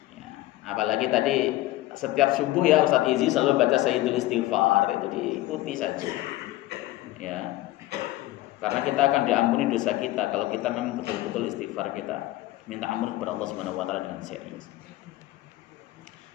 Ya, apalagi tadi setiap subuh ya Ustaz Izi selalu baca Sayyidul Istighfar, itu diikuti saja. Ya, karena kita akan diampuni dosa kita kalau kita memang betul-betul istighfar, kita minta ampun kepada Allah Subhanahu wa taala dengan serius.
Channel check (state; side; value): quieter; right; 16.8 dB